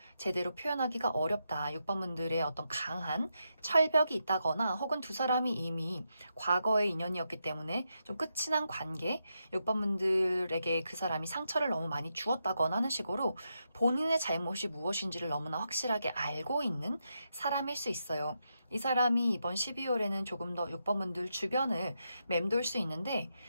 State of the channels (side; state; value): both; inverted; correlation -0.84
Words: 제대로 표현하기가 어렵다. 6번분들의 어떤 강한 철벽이 있다거나 혹은 두 사람이 이미 과거의 인연이었기 때문에 좀 끝이 난 관계, 6번분들에게 그 사람이 상처를 너무 많이 주었다거나 하는 식으로 본인의 잘못이 무엇인지를 너무나 확실하게 알고 있는 사람일 수 있어요. 이 사람이 이번 12월에는 조금 더 6번분들 주변을 맴돌 수 있는데